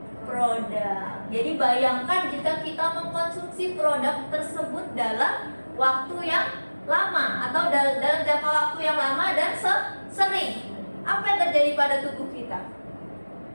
Jadi bayangkan jika kita mengkonsumsi produk tersebut dalam waktu yang lama atau dalam jangka waktu yang lama dan sering. Apa yang terjadi pada tubuh kita?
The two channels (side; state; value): both; inverted; correlation -1.00